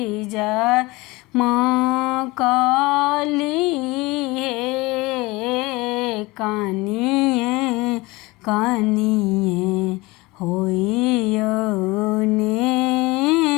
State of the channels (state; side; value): quieter; right; 22.5 dB